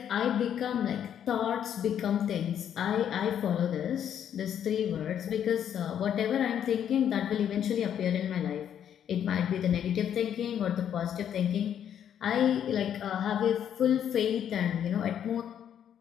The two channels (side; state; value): right; quieter; 9.4 dB